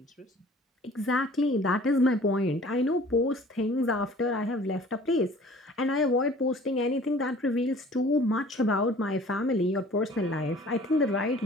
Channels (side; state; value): both; normal; correlation 0.49